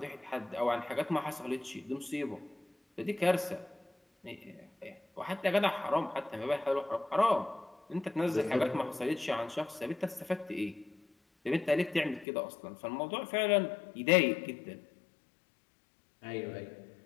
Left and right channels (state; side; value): drops out; right; at 12.2 s